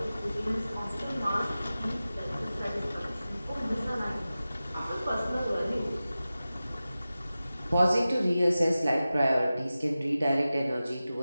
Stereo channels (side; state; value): both; inverted; correlation -0.95